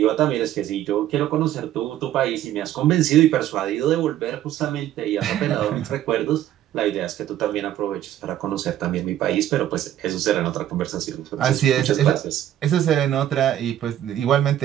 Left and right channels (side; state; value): left; quieter; 12.0 dB